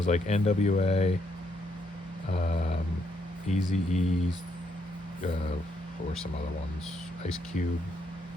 like NWA, Eazy-E, or some other ones, Ice Cube,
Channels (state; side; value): normal; both; correlation 0.74